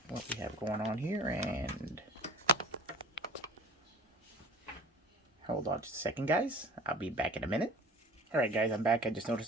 what we have going on here, and hold on just a second, guys. I'll be back in a minute. Alright guys, I'm back. I just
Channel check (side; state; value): both; normal; correlation 0.43